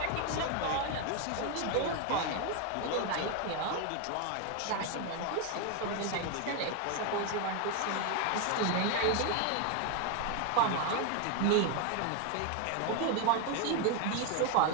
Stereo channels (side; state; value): both; different; correlation 0.01